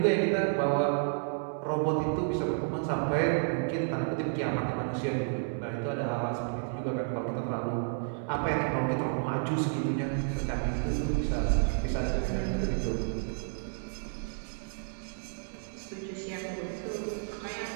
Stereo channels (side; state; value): left; silent; 57 dB below the other